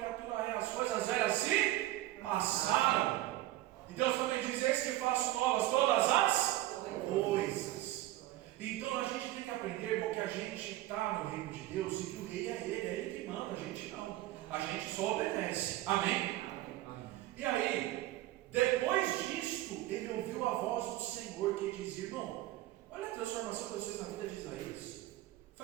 é, as coisas velhas se passaram. E Deus também diz: eis que faço novas todas as coisas. Então a gente tem que aprender, irmão, que a gente está no reino de Deus e que o rei é ele que manda, a gente não. A gente só obedece. Amém? E aí, depois disto, ele ouviu a voz do Senhor que dizia: irmão, olha a transformação de vocês na vida de Isaías.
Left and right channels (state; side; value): quieter; left; 15.9 dB